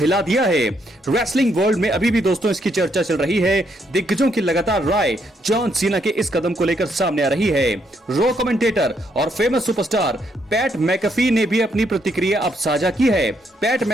दिया है। रेसलिंग वर्ल्ड में अभी भी दोस्तों इसकी चर्चा चल रही है। दिग्गजों की लगातार राय जॉन सीना के इस कदम को लेकर सामने आ रही है। रो कमेंटेटर और फेमस सुपरस्टार पैट मैकफी ने भी अपनी प्रतिक्रिया अब साझा की है। पैट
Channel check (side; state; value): both; normal; correlation 0.74